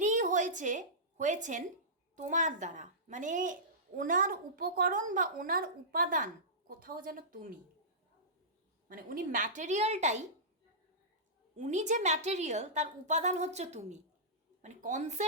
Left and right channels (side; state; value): both; normal; correlation -0.18